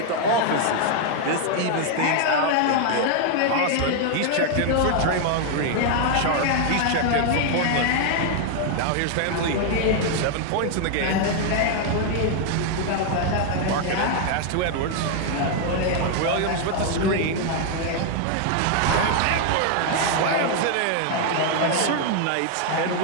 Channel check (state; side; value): different; both; correlation 0.00